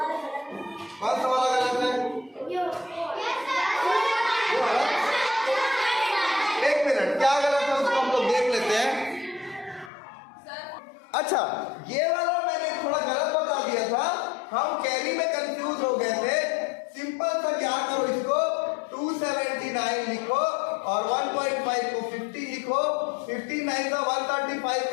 कौन सा वाला गलत है? एक मिनट, क्या गलत है उसको हम लोग देख लेते हैं। अच्छा, ये वाला मैंने थोड़ा गलत बता दिया था, हम कैरी में कंफ्यूज हो गए थे। सिंपल सा क्या करो, इसको 279 लिखो और 1.5 को 50 लिखो, 59 का 135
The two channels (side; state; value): right; drops out; at 9.9 s